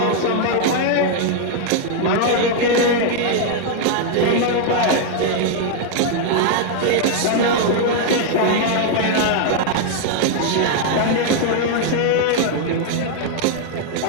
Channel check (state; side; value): different; both; correlation 0.00